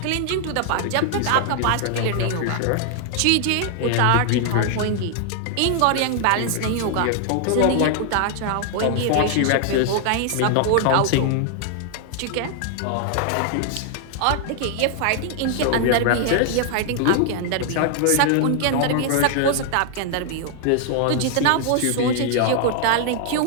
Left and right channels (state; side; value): different; both; correlation 0.00